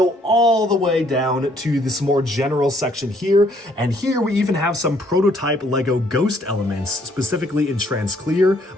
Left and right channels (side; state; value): both; normal; correlation 0.66